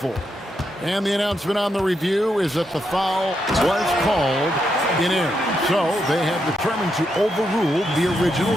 And the announcement on the review is that the foul was called in error. So they have determined to overrule the original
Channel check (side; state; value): both; normal; correlation 0.81